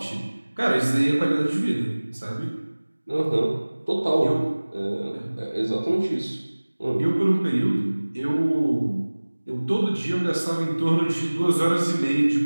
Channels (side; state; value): both; inverted; correlation -1.00